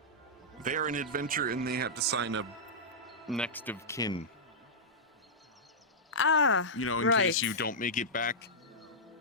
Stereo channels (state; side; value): normal; both; correlation -0.11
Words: They're an adventure and they have to sign a next of kin. Ah, You know, in right. case you don't make it back,